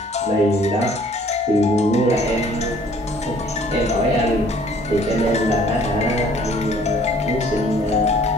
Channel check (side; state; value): both; normal; correlation 0.57